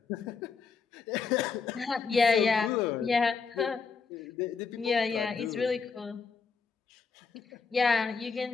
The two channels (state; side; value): quieter; right; 5.2 dB